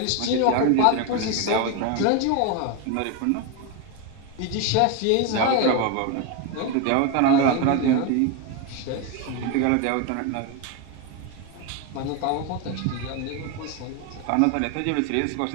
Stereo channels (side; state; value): both; different; correlation 0.02